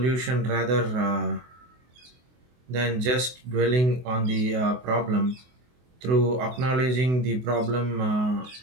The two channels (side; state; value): left; late; 24 ms